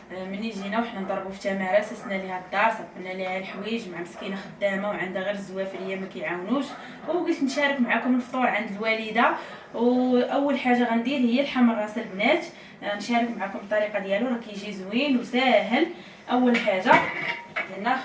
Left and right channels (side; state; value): both; identical; correlation 1.00